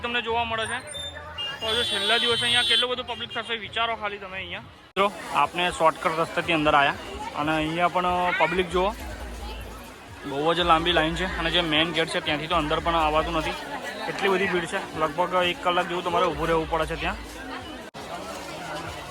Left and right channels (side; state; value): both; identical; correlation 1.00